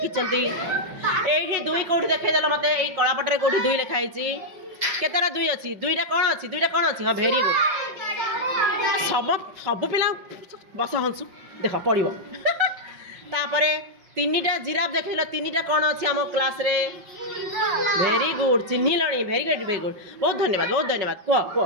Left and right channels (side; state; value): left; late; 5.5 ms